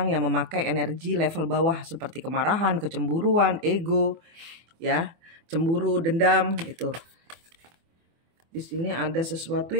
yang memakai energi level bawah seperti kemarahan, kecemburuan, ego, ya, cemburu, dendam itu. Di sini ada sesuatu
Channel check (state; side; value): late; left; 24 ms